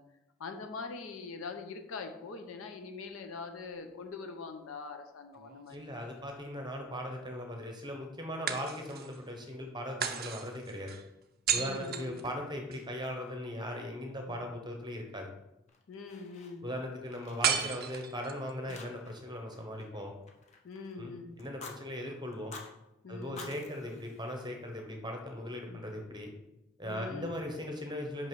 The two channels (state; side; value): normal; both; correlation 0.36